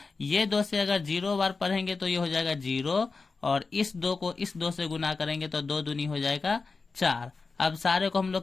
ये 2 से अगर 0 बार पढ़ेंगे, तो ये हो जाएगा 0। और इस 2 को इस 2 से गुना करेंगे, तो 2 दूनी हो जाएगा 4। अब सारे को हम लोग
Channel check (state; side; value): quieter; right; 4.3 dB